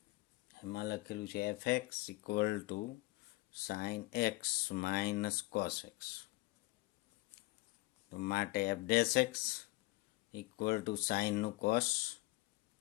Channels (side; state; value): right; quieter; 21.2 dB